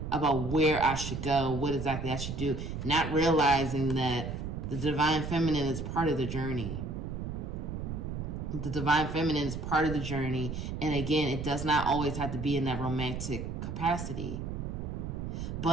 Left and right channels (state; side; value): noise; right; rumble, 5 dB below the sound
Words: about where I should go, what exactly I should do. Not realizing that the divine feminine is part of the journey. The divine feminine is part of the journey. And again, it does not always have to be in that romantic capacity.